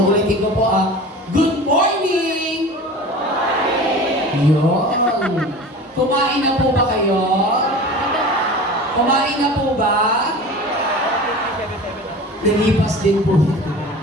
ko po good morning! Yun. Kumain na po ba kayo? Kumain na po ba? Nilipas din po.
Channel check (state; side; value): normal; both; correlation 0.37